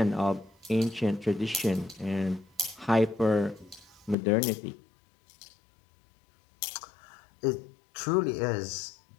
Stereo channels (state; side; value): drops out; right; at 4.2 s